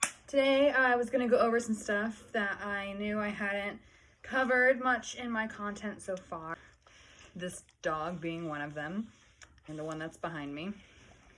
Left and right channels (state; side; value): identical; both; correlation 1.00